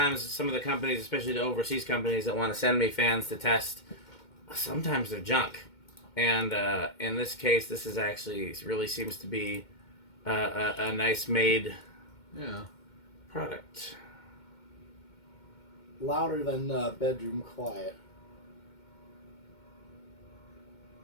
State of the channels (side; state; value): right; late; 2.2 ms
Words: some of the companies, especially the overseas companies that want to send me fans to test, sometimes they're junk. And in this case, this is actually really seems to be a nice made product. Louder than bedroom quiet.